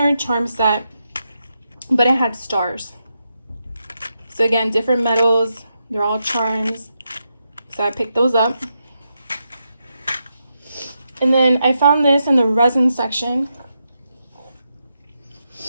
charm set, but it had stars. So again, different metals. They're all charms. So I picked those up. And then I found this in the resin section.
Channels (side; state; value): both; inverted; correlation -0.84